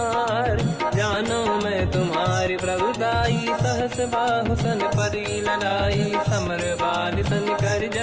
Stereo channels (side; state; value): both; identical; correlation 1.00